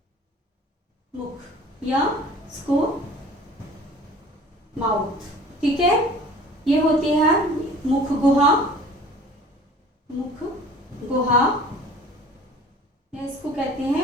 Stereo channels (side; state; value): both; normal; correlation 0.47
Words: मुख या इसको माउथ। ठीक है, ये होती है मुख गुहा, मुख गुहा, या इसको कहते